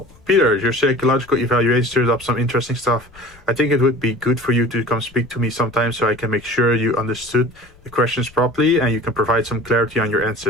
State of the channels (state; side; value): noise; left; rumble, 26 dB below the sound